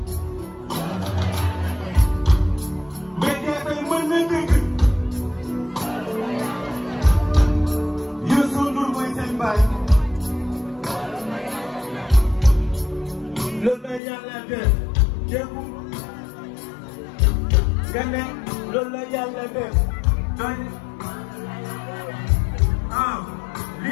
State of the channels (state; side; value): drops out; right; at 14.0 s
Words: mais tey mën na dégg Youssou Ndour mooy seen baay loolu la yàlla def dégg nga ne loolu la yàlla def doy